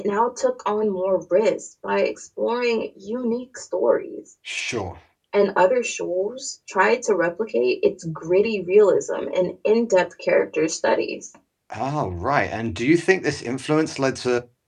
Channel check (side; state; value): both; identical; correlation 1.00